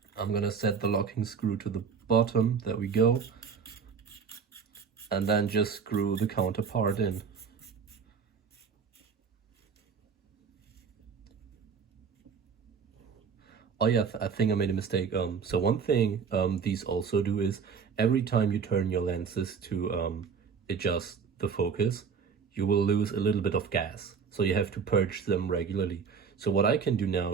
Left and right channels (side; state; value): left; quieter; 6.1 dB